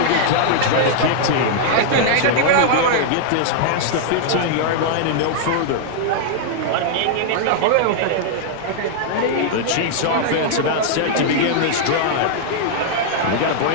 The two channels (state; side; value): different; both; correlation -0.01